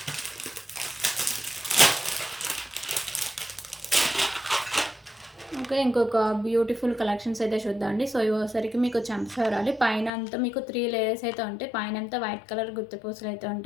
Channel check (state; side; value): drops out; right; at 10.1 s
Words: Okay, ఇంకొక బ్యూటిఫుల్ కలెక్షన్స్ అయితే చూద్దామండి. సో ఇవసరికి మీకు చంపసవరాలి పైన అంతా మీకు 3 లేయర్స్ అయితే ఉంటాయి. పైన అంతా వైట్ కలర్ గుత్తపూసలు అయితే